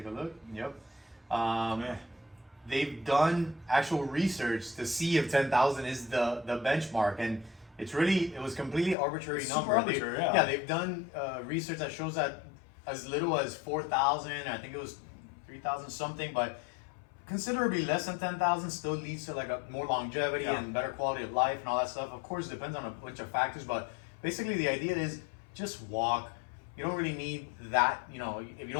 a look. Yep. They've done actual research to see if 10,000 is the benchmark, and it was completely arbitrary It's number. super arbitrary, yeah. Yeah, they've done research that shows that as little as 4,000. I think it was 3,000 something, but considerably less than 10,000 still leads to like a more longevity Yeah. and better quality of life and all that stuff. Of course, it depends on a bunch of factors, but basically the idea is just walk. You don't really need that, if you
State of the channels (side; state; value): right; drops out; at 9.0 s